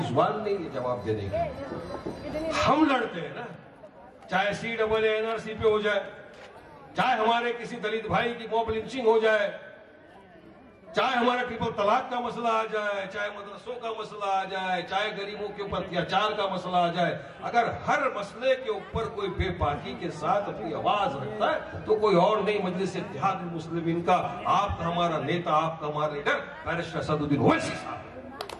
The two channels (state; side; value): identical; both; correlation 1.00